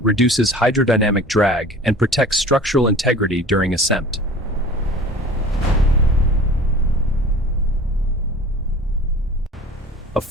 reduces hydrodynamic drag and protects structural integrity during ascent. A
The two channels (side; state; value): both; normal; correlation 0.42